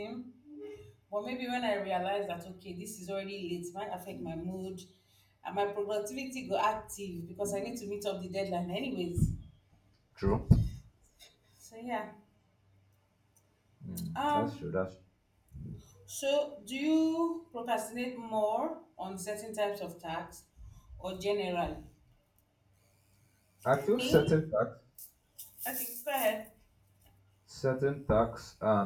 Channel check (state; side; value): identical; both; correlation 1.00